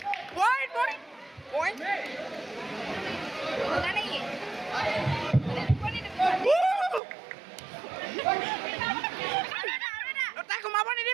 Point. তাই ঘুমাব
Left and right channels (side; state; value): left; drops out; at 7.0 s